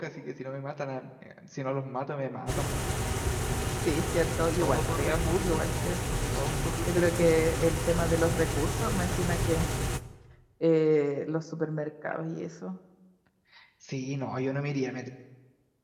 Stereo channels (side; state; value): both; identical; correlation 1.00